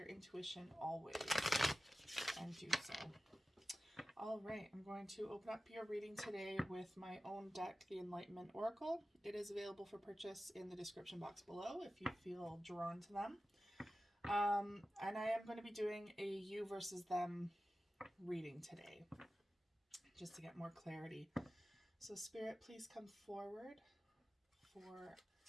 intuition always and do so. All right, I'm going to open up your reading today with my own deck, the Enlightenment Oracle. It is available for purchase in the description box below if you feel drawn to them. And I am going to be doing a you versus them reading today, just to get more clarity. So Spirit, please come forward for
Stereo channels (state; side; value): normal; both; correlation 0.95